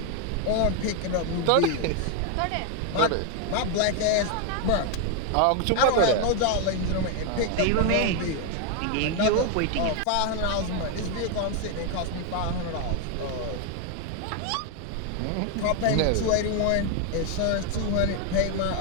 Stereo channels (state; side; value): different; both; correlation 0.01